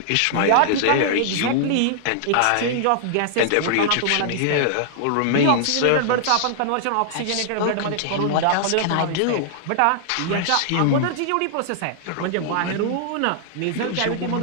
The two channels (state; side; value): different; both; correlation -0.01